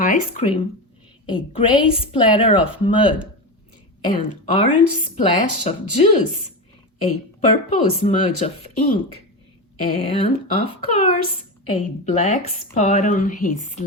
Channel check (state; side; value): normal; both; correlation 0.18